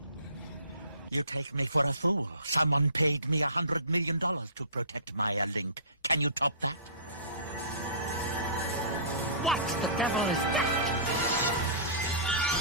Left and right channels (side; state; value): both; inverted; correlation -0.40